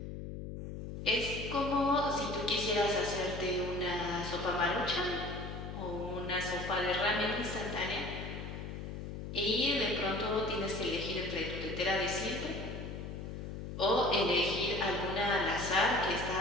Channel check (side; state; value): left; noise; hum, 7 dB below the sound